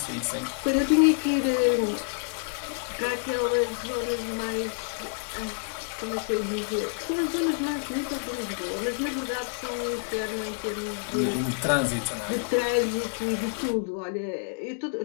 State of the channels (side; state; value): right; silent; digital silence